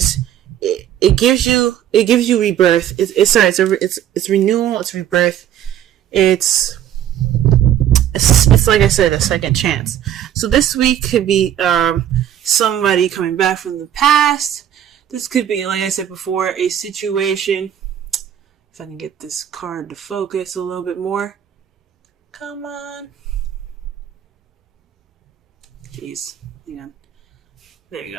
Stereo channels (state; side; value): quieter; left; 10.6 dB